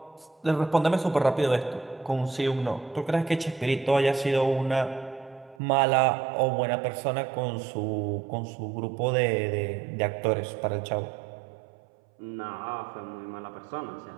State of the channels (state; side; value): drops out; left; at 5.6 s